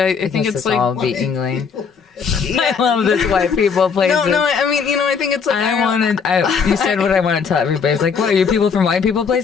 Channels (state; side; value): quieter; right; 6.0 dB